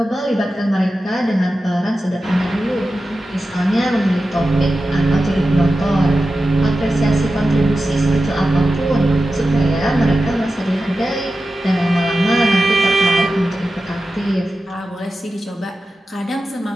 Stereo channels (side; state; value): both; normal; correlation 0.92